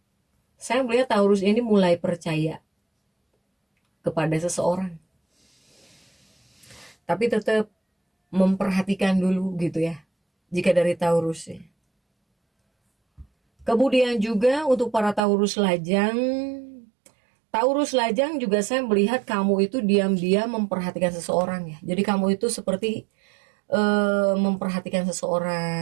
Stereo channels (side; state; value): left; drops out; at 15.2 s